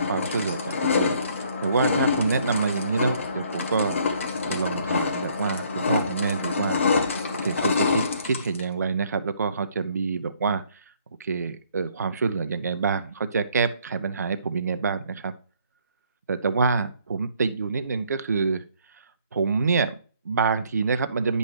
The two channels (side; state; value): both; inverted; correlation -0.64